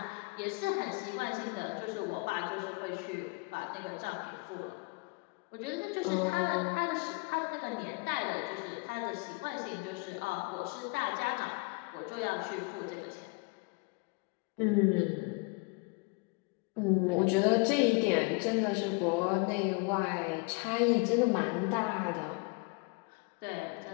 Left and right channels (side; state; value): right; quieter; 29.6 dB